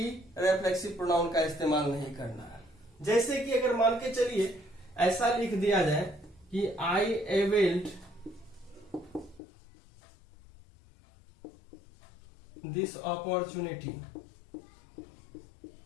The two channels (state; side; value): drops out; right; at 9.4 s